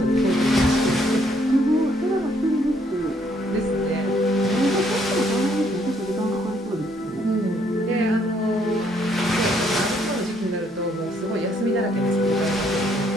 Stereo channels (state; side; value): normal; both; correlation 0.68